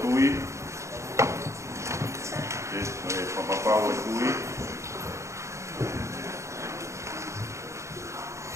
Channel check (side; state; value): left; late; 0.14 ms